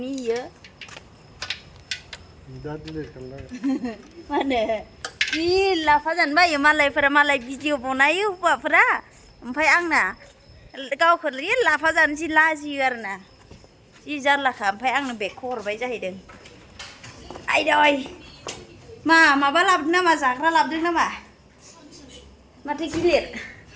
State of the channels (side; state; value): both; identical; correlation 1.00